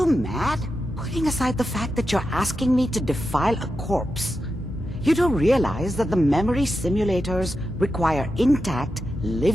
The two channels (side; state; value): both; normal; correlation 0.89